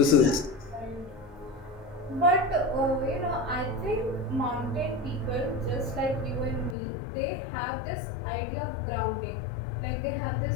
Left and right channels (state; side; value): drops out; right; at 6.8 s